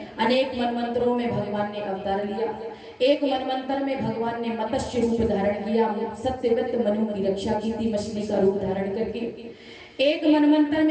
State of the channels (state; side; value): identical; both; correlation 1.00